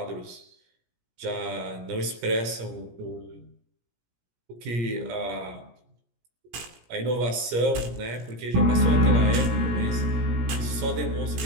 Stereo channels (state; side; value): late; left; 17 ms